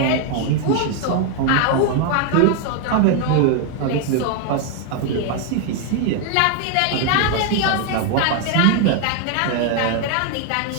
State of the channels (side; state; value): both; different; correlation 0.01